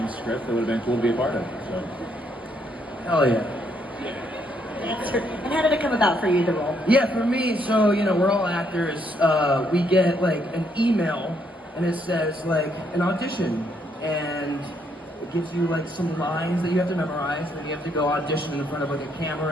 script that would have been cool to be a part of. So. Hell yeah. And how did it come about for you, the role? Yeah, for me, so, we're all actors. We get, like, an email, and it says, like, an audition. And it gives you, like, some lines that you have to memorize, and then you have to go audition in front of, like, a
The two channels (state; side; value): normal; both; correlation 0.73